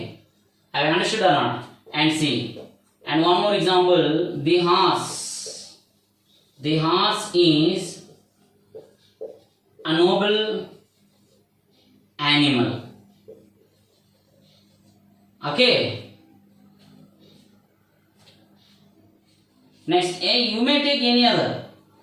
have you understood or not? And see, and one more example, the horse is a noble animal. Okay. Next, you may take any other.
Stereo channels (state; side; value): identical; both; correlation 1.00